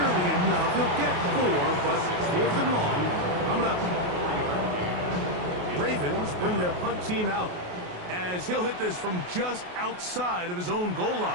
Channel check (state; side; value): late; left; 28 ms